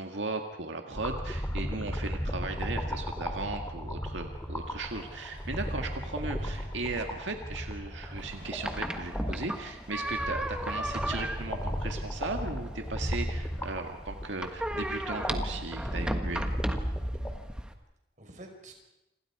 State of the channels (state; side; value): normal; both; correlation 0.62